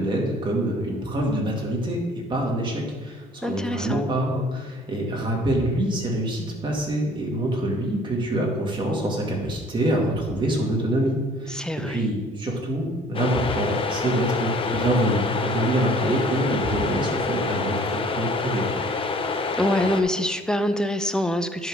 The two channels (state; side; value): normal; both; correlation 0.55